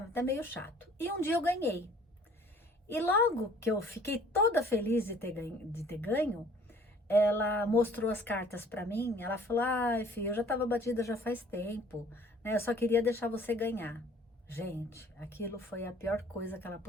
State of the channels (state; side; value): normal; both; correlation 0.54